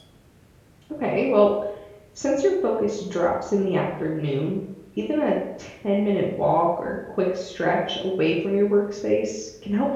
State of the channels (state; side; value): identical; both; correlation 1.00